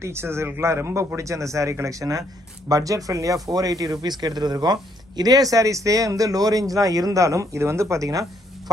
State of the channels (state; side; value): normal; both; correlation 0.70